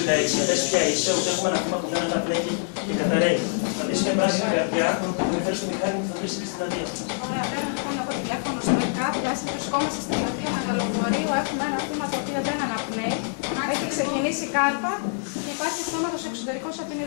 πες ποια είσαι, ότι έχουμε ένα θύμα που δεν αναπνέει και καταραίει. Θα δεις μια πράσινη καρδιά, θα με φέρεις στο μηχάνημα και θα βρεις και στην πλατεία. Ωραία, πέρα λοιπόν από τηλέφωνο στο ΕΚΑΠ, βρισκόμαστε στην πλατεία Μεγαλοφορείου, έχουμε ένα θύμα το οποίο δεν αναπνέει, έχει ξεκινήσει κάρπα και υπάρχει αυτόματος εξωτερικός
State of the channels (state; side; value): silent; right; digital silence